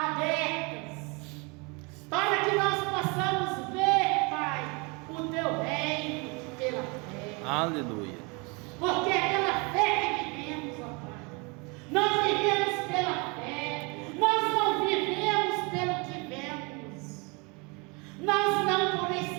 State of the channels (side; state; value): left; quieter; 29.7 dB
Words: para que nós possamos ver, Pai, o Teu reino pela fé. Aleluia. Porque é pela fé que vivemos, ó Pai. Nós vivemos pela fé. Nós não vivemos pelo que vemos. Nós não